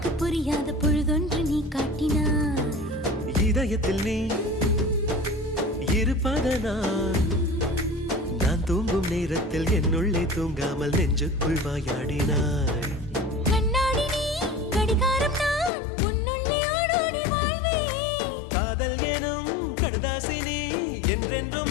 புரியாத பொழுதொன்று நீ காட்டினாய். இதயத்தில் நீ இருப்பதனால் நான் தூங்கும் நேரத்தில் என்னுள்ளே தூங்காமல் நெஞ்சுக்குள் வாயாடினாய். கண்ணாடி நீ கடிகாரம் நான் உன்னுள்ளே ஓடோடி வாழ்வேன். காதல் எனும் கடுதாசி நீ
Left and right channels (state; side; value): drops out; right; at 15.7 s